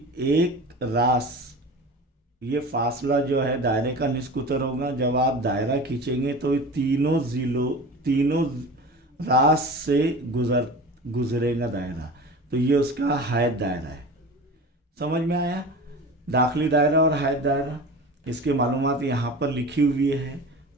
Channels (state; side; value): normal; both; correlation 0.34